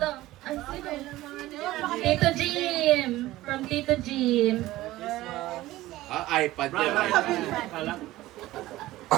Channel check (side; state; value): left; quieter; 16.8 dB